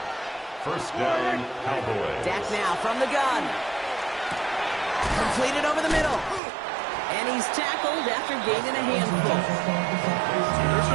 First down, Cowboys. Dak now from the gun. Completed over the middle. And he's tackled after gaining a handful. There's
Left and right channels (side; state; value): left; drops out; at 6.4 s